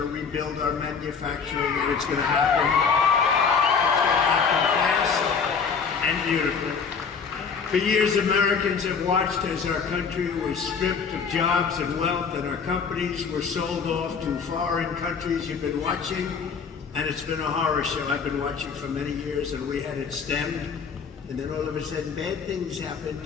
rebuild our manufacturing, and it's going to happen. It's going to happen fast and beautifully. For years, Americans have watched as our country was stripped of jobs and wealth, and our companies were sold off to foreign countries. You've been watching, and it's been a horror show. I've been watching for many years, and we had it stemmed. And then all of a sudden, bad things happened.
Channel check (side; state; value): right; quieter; 5.9 dB